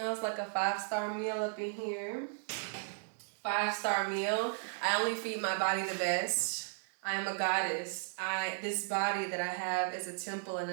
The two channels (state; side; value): silent; left; digital silence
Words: like a 5-star meal up in here. 5-star meal. I only feed my body the best. I am a goddess. This body that I have is a temple and